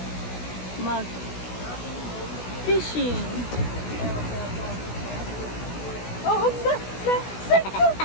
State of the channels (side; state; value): right; late; 16 ms